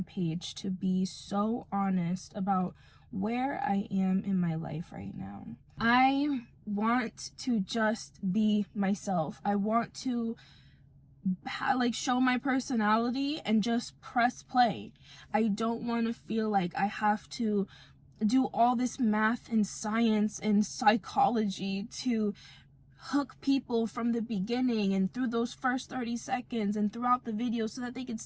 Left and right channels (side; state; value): both; identical; correlation 1.00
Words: page, to be so honest about where I am in my life right now. I want to just be myself. I want to show my personality and just press play. I don't want to feel like I have to do all this math and science and psychology to hook people from the beginning and through those first 30 seconds and throughout the video so that they could